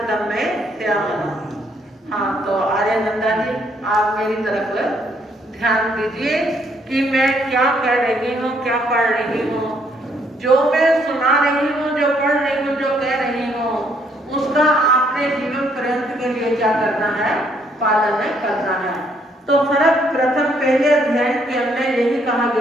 दम्मे श्यामना। हाँ, तो आर्यानंदा जी आप मेरी तरफ ध्यान दीजिए कि मैं क्या कह रही हूँ, क्या पढ़ रही हूँ। जो मैं सुना रही हूँ, जो पढ़ रही हूँ, जो कह रही हूँ, उसका आपने जीवन पर्यंत के लिए क्या करना है, पालन करना है। तो सर्वप्रथम पहले अध्ययन के अंदर यही कहा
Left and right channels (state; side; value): normal; both; correlation 0.69